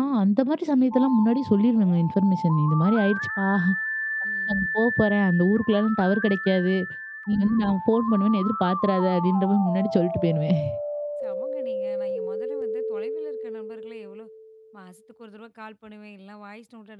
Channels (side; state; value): both; identical; correlation 1.00